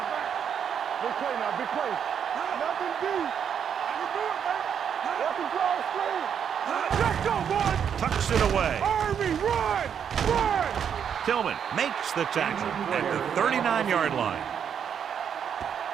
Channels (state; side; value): quieter; left; 8.0 dB